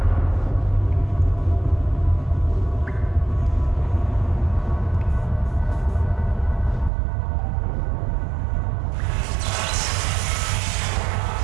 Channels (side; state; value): left; drops out; at 6.9 s